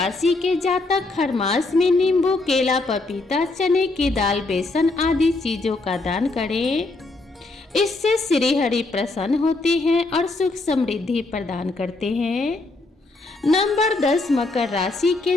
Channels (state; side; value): quieter; right; 3.2 dB